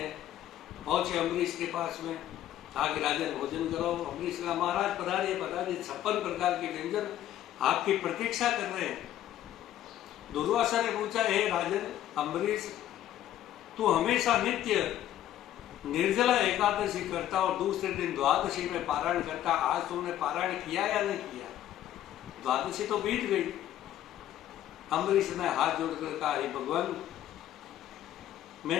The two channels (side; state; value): right; quieter; 12.3 dB